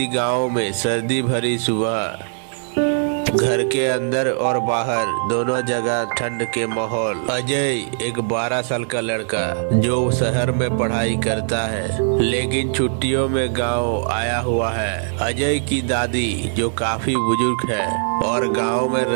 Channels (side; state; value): left; silent; 64 dB below the other